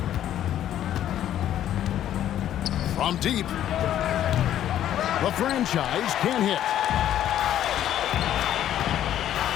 From deep. The franchise can hit.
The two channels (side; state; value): right; quieter; 11.4 dB